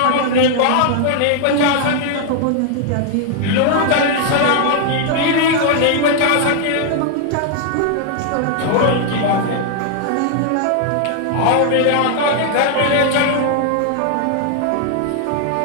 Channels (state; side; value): different; both; correlation 0.00